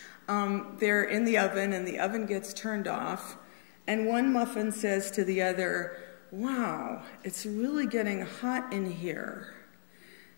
They're in the oven, and the oven gets turned off, and one muffin says to the other, wow, it's really getting hot in here.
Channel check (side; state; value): right; silent; 55 dB below the other